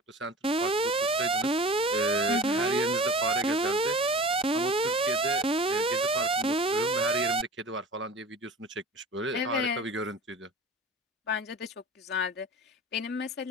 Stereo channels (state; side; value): normal; both; correlation 0.38